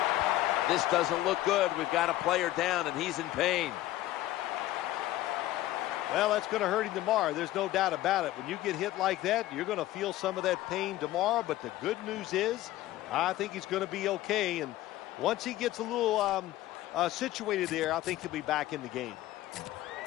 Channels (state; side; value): quieter; right; 15.4 dB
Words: This doesn't look good. We've got a player down, and he's in pain. Well, that's going to hurt him tomorrow. There's no doubt about it. When you get hit like that, you're going to feel some of that pain tomorrow. But the good news is, I think he's going to be okay. And once he gets a little situated there, I think he'll be back in the game.